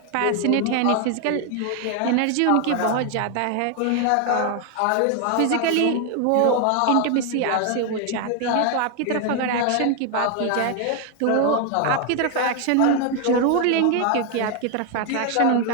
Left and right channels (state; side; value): different; both; correlation 0.01